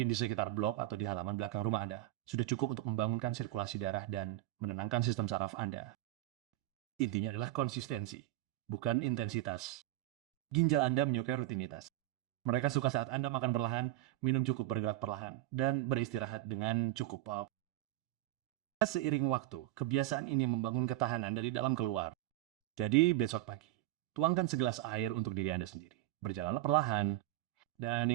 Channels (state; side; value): quieter; left; 16.0 dB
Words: di sekitar blok atau di halaman belakang rumah Anda, sudah cukup untuk membangunkan sirkulasi darah dan menenangkan sistem saraf Anda. Intinya adalah konsistensi, bukan intensitas. Ginjal Anda menyukai rutinitas. Mereka suka saat Anda makan perlahan, minum cukup, bergerak perlahan, dan beristirahat dengan cukup. Seiring waktu, kebiasaan ini membangun ketahanan dari dalam keluar. Jadi besok pagi, tuangkan segelas air untuk diri Anda sendiri. Berjalanlah perlahan. Dan